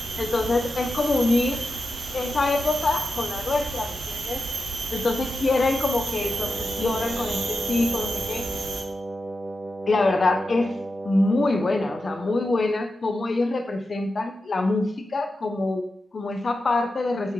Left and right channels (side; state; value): both; normal; correlation 0.90